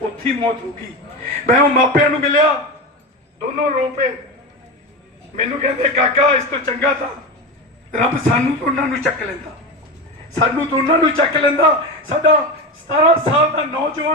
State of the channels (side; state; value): both; normal; correlation 0.21